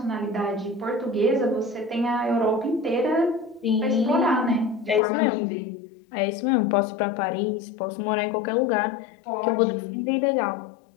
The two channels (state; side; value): drops out; right; at 5.0 s